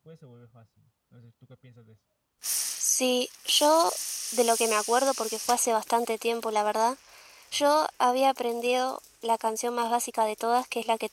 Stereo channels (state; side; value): identical; both; correlation 1.00